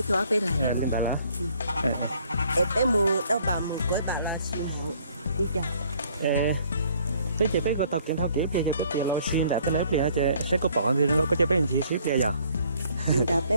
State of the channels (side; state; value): both; inverted; correlation -0.61